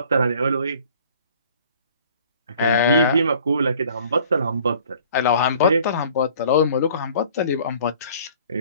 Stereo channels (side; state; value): both; inverted; correlation -0.53